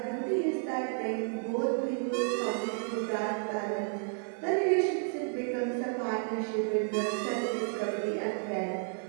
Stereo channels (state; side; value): silent; left; 57 dB below the other